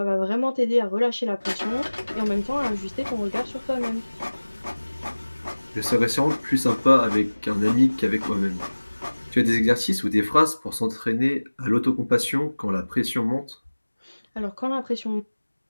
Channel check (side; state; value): both; inverted; correlation -1.00